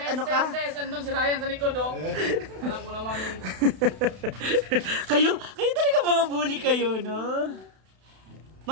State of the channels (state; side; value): late; left; 32 ms